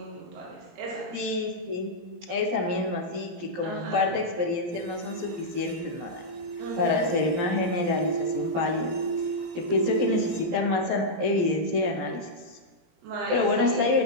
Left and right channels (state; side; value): late; left; 17 ms